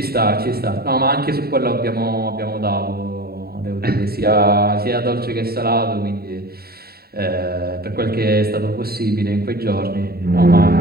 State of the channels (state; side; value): late; left; 0.45 ms